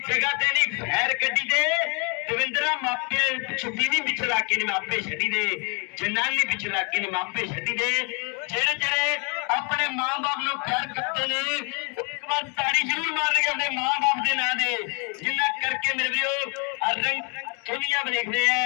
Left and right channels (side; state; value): right; quieter; 33.5 dB